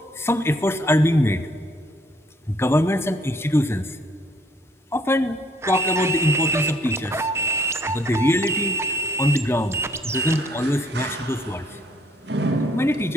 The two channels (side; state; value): both; normal; correlation 0.65